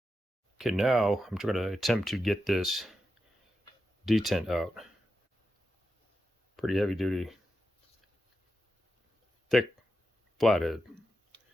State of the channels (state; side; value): normal; both; correlation 0.89